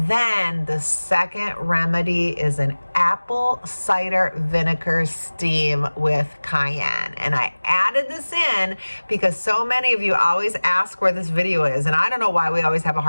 then the second remedy is an apple cider vinegar steam with cayenne. And I added this in because so many of you always ask where this video is, and I don't know why we always have a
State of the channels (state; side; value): inverted; both; correlation -1.00